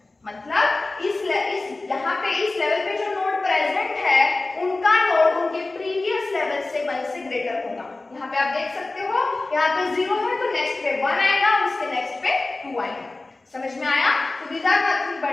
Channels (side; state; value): right; quieter; 3.2 dB